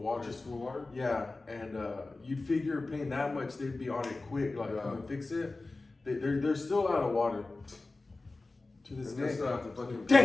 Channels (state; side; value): quieter; right; 3.4 dB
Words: Just for water? Yeah, and you'd figure paying that much, they'd be on it quick, like come and fix it. They're still out of water to this And they day. still have to fucking